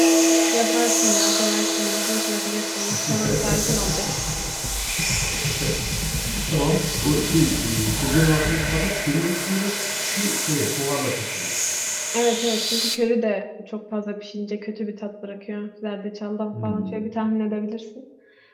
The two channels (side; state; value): both; identical; correlation 1.00